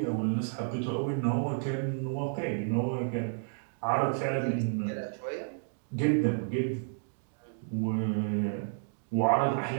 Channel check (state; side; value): silent; left; digital silence